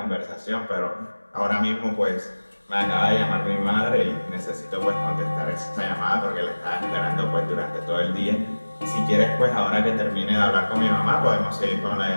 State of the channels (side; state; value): both; inverted; correlation -1.00